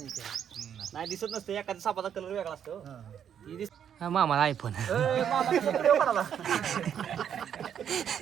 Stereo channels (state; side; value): quieter; left; 8.8 dB